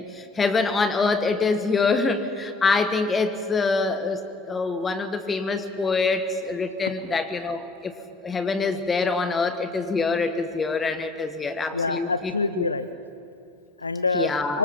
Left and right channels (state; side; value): quieter; right; 3.5 dB